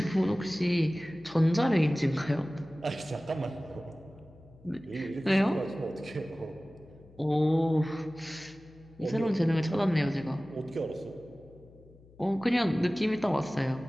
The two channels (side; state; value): left; noise; hum, 24 dB below the sound